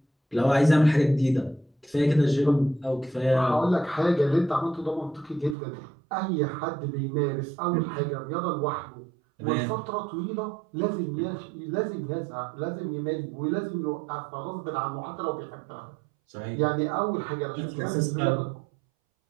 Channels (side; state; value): left; drops out; at 5.6 s